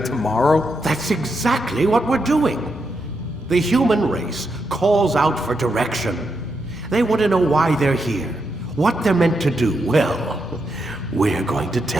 That's exactly what we're doing. The human race calls out for direction. They want to know why they're here, what they're meant to do. Well, we're going to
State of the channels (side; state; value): both; normal; correlation 0.83